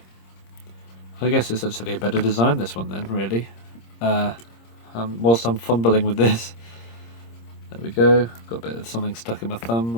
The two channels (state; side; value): late; right; 26 ms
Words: I guess it's actually a better design, this one then, really. Whilst I'm fumbling with this. There we go. Got a bit of something stuck in my thumb